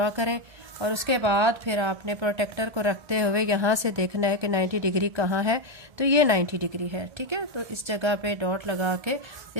करें और उसके बाद फिर आपने प्रोटेक्टर को रखते हुए यहाँ से देखना है कि 90 डिग्री कहाँ है। तो ये 90 डिग्री है, ठीक है। तो इस जगह पे डॉट लगा के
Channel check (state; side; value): late; left; 1.2 ms